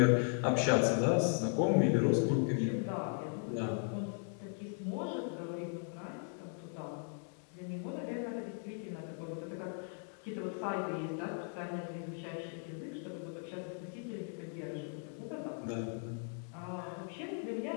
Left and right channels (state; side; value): silent; right; 53 dB below the other